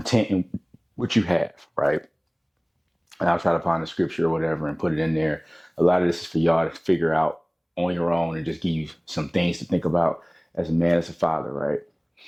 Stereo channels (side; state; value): both; identical; correlation 1.00